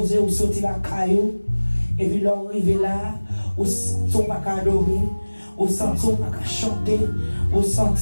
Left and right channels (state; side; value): inverted; both; correlation -1.00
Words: ou sortir la caillou, et puis l'on arrive là, ou sont pas qu'à adorer, ou sentir pas qu'à chanter, ou